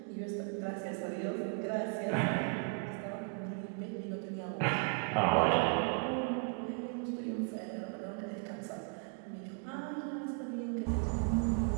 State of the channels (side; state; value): left; quieter; 40.0 dB